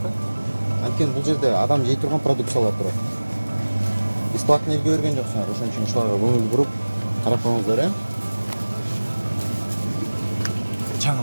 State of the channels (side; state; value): both; inverted; correlation -1.00